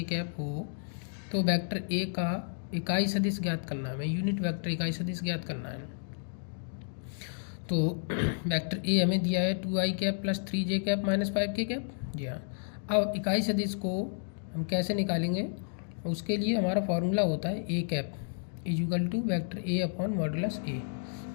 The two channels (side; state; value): right; silent; digital silence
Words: cap हो तो वेक्टर a का इकाई सदिश ज्ञात करना है, यूनिट वेक्टर इकाई सदिश ज्ञात करना है। तो वेक्टर a हमें दिया है 2i cap plus 3j cap minus 5k cap. जी हाँ, अब इकाई सदिश को हम कैसे निकालेंगे, उसके लिए हमारा फॉर्मूला होता है A cap is equal to vector A upon modulus A.